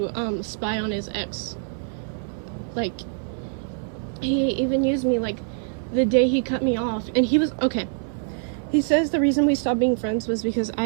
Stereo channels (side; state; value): left; silent; 61 dB below the other